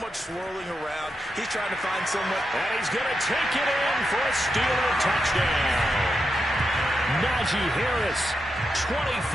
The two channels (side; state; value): both; normal; correlation 0.86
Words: much swirling around. He's trying to find someone. And he's going to take it in for a Steeler touchdown. Najee Harris, 25